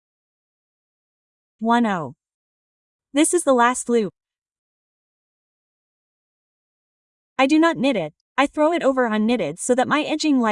1, 0. This is the last loop. I do not knit it, I throw it over unknitted so that my edging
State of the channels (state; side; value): identical; both; correlation 1.00